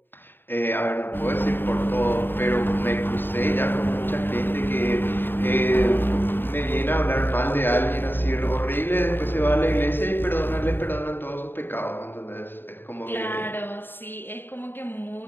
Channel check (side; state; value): right; late; 0.097 ms